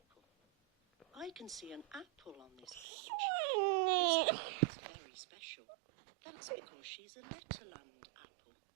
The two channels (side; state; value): left; drops out; at 2.9 s